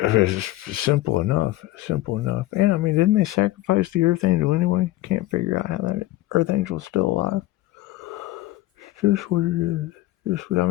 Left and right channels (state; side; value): quieter; right; 16.5 dB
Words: simple enough. Simple enough. And I mean, didn't they sacrifice the Earth Angel anyway? Can't figure out how that Earth Angel's still alive. It's just what it is. I